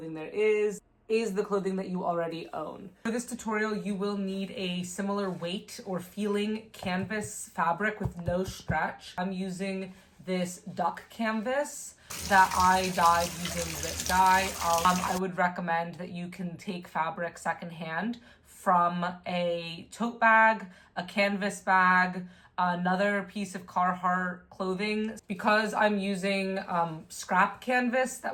there is the clothing that you already own. For this tutorial, you will need a similar weight or feeling canvas fabric with no stretch. I'm using this duck canvas that I dyed using zip dye. I would recommend that you can take fabric secondhand from a tote bag, a canvas bag, another piece of Carhartt clothing. Because I'm using scrap canvas,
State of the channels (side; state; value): both; identical; correlation 1.00